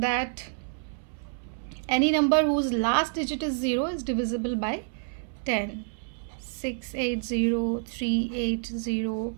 any number whose last digit is 0 is divisible by 10. 680, 380,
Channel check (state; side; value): silent; left; 59 dB below the other